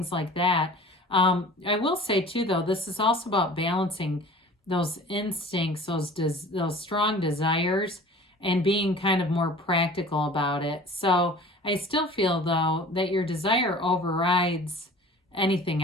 like that. I will say too, though, this is also about balancing those instincts, those strong desires, and being kind of more practical about it. So I still feel, though, that your desire overrides anything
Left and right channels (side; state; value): both; normal; correlation 0.43